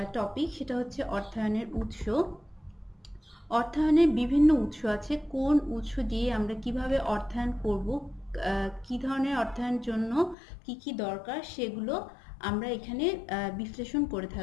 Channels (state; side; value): drops out; right; at 10.4 s